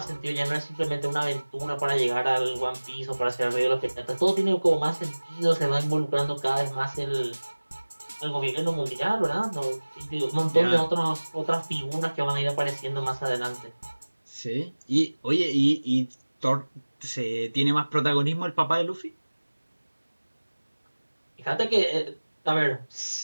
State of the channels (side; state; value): both; inverted; correlation -1.00